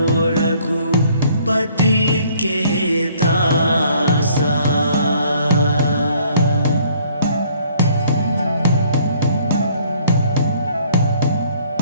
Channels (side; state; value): both; inverted; correlation -0.60